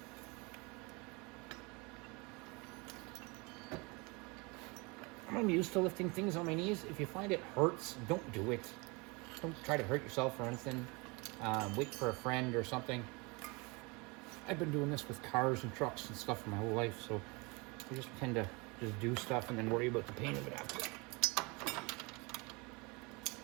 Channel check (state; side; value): quieter; left; 27.8 dB